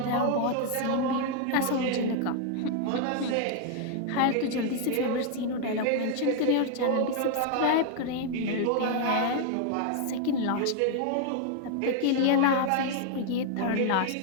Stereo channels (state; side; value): different; both; correlation 0.00